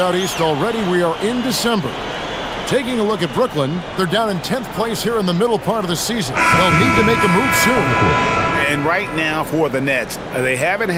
east already. We are in December. Taking a look at Brooklyn, they're down in 10th place here in the middle part of the season. They'll need to make a move soon. And right now for the Nets, they haven't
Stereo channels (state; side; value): identical; both; correlation 1.00